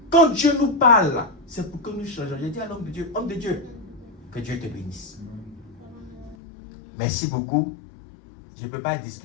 Quand Dieu nous parle, c'est pour que nous changeons. J'ai dit à l'homme de Dieu, que Dieu te bénisse. Merci beaucoup. Je ne peux pas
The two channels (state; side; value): drops out; right; at 6.4 s